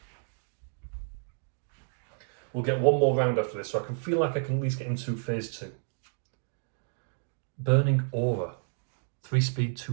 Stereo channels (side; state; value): left; silent; digital silence